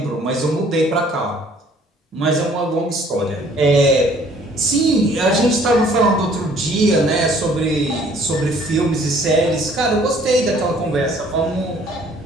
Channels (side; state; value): both; normal; correlation 0.57